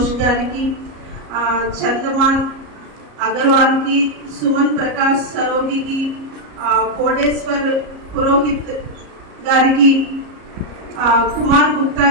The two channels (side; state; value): left; late; 34 ms